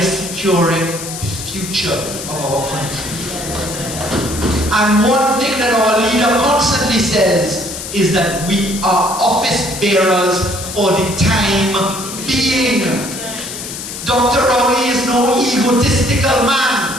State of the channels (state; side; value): noise; left; hiss, 9 dB below the sound